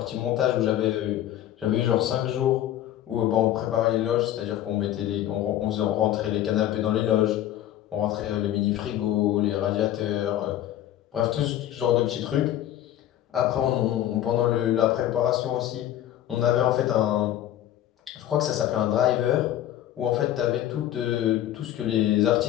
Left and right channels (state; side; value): quieter; right; 12.4 dB